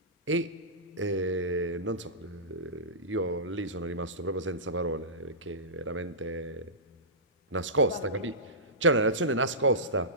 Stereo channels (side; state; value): both; normal; correlation -0.19